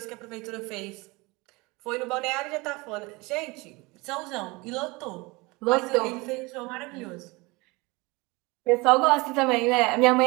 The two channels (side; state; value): left; quieter; 24.7 dB